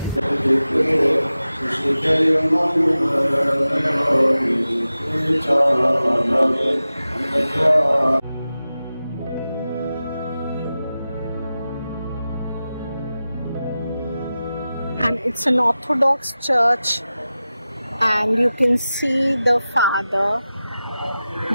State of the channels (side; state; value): both; inverted; correlation -0.94